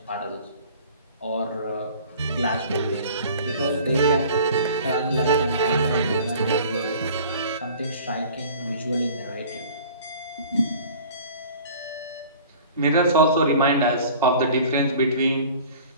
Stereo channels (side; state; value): both; inverted; correlation -0.46